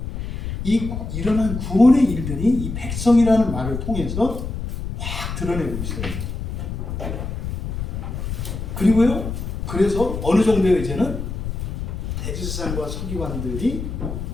이 일어난 구원의 일들이 이 백성이라는 말을 통해서 확 드러내고 있어요. 그리고요 그래서 어느 정도의 이제는 대제사장과 서기관들이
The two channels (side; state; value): left; noise; rumble, 5 dB below the sound